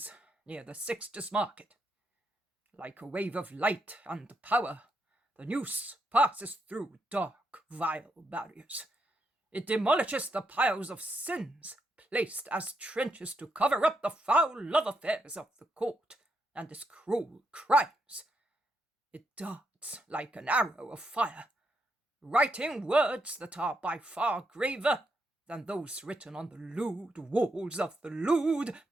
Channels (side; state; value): both; normal; correlation 0.79